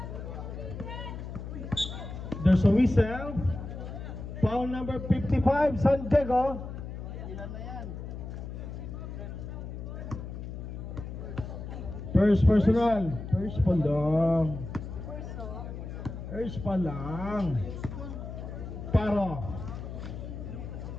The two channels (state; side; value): noise; left; hum, 8 dB below the sound